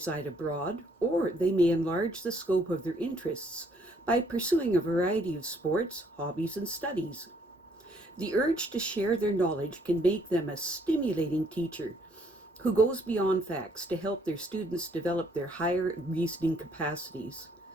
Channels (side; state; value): both; normal; correlation 0.66